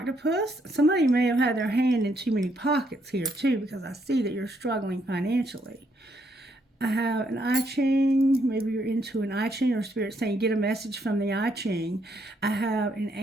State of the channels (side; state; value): both; normal; correlation 0.73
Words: Somebody may have had their hand in too many pockets here too, because I see that you're struggling financially. I have an I Ching. Maybe you're into an I Ching or spirit saying get a message from the I Ching. I have an